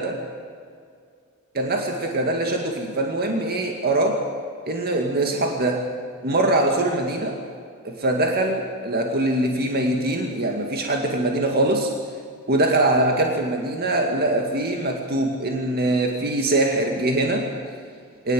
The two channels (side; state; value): both; normal; correlation 0.04